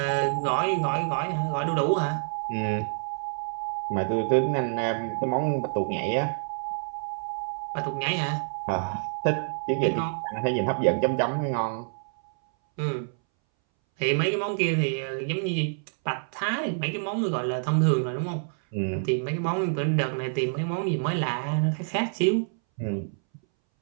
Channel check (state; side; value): silent; left; 60 dB below the other